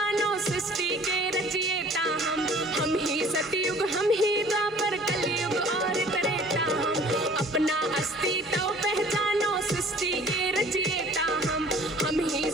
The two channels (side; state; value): both; normal; correlation 0.50